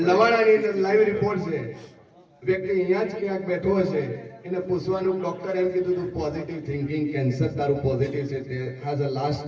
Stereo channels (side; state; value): both; identical; correlation 1.00